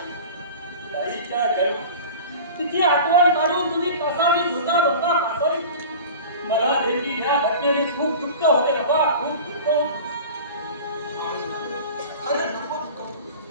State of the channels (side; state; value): both; inverted; correlation -0.37